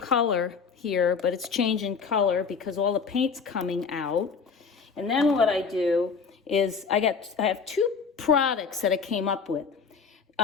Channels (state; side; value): quieter; right; 5.5 dB